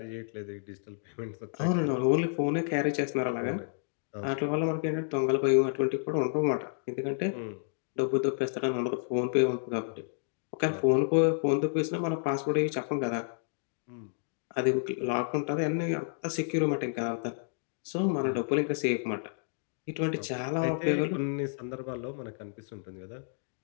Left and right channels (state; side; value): silent; right; digital silence